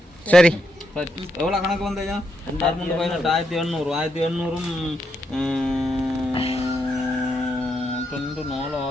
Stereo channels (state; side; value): normal; both; correlation 0.81